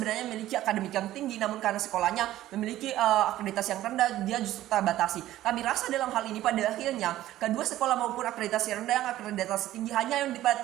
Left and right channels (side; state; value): left; quieter; 14.2 dB